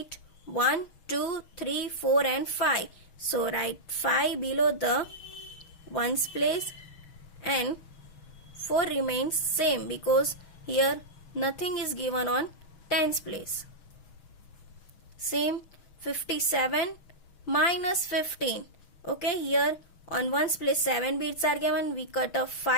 1, 2, 3, 4 and 5. So write 5 below the ones place and 4 remains same because here nothing is given on tens place. Same 57 minus 15. Okay, here on ones place 7 beads are given. We cut off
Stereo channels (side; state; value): right; late; 6.2 ms